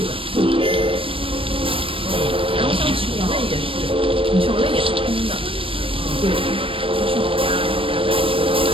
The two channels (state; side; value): late; left; 0.26 ms